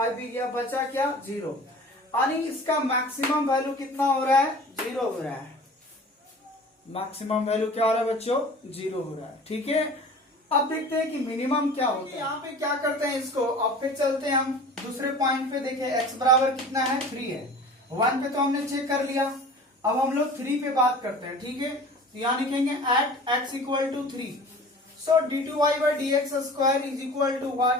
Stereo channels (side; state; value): both; normal; correlation 0.41